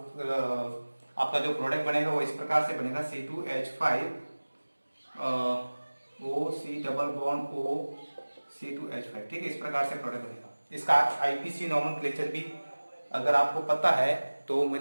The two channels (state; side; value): inverted; both; correlation -1.00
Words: आपका जो प्रोडक्ट बनेगा वो इस प्रकार से बनेगा C2H5OC≡O ठीक है, इस प्रकार से प्रोडक्ट बनेगा। इसका आईपीसी नॉमेनक्लेचर भी अगर आपको पता है तो